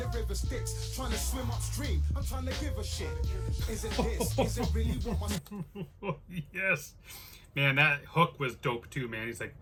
river Styx. Trying to swim upstream, I'm trying to give a shit. Is it this? Is it really what my... Yes. Man, that hook was dope too, man. He's like,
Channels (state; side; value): identical; both; correlation 1.00